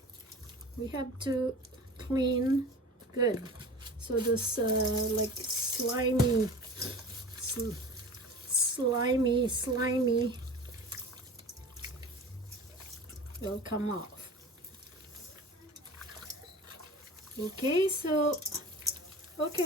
we have to clean good. So this like slimy will come off. Okay, so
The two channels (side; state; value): both; normal; correlation 0.37